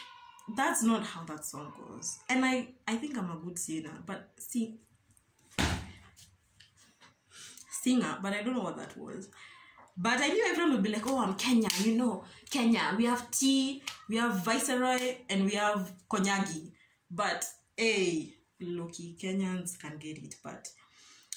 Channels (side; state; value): both; identical; correlation 1.00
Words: That's not how that song goes. And I think I'm a good singer, but but I don't know what that was. But I knew everyone would be like, oh, I'm Kenya, you know, Kenya. We have tea, we have Viceroy, and we have Konyagi. But, hey, low-key, Kenyans can get it. But